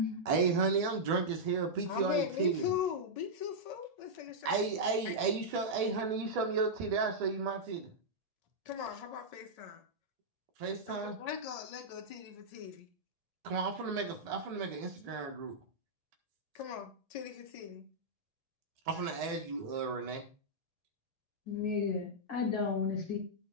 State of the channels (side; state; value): left; late; 1.8 ms